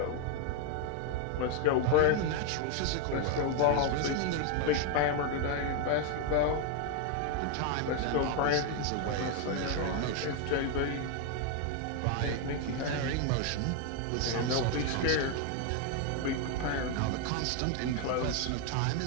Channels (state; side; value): different; both; correlation 0.01